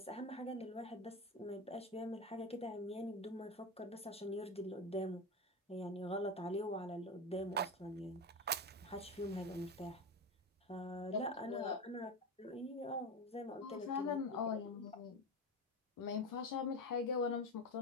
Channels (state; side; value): normal; both; correlation 0.20